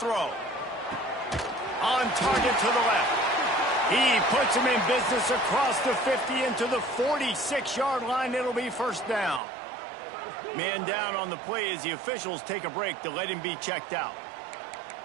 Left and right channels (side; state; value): left; drops out; at 9.4 s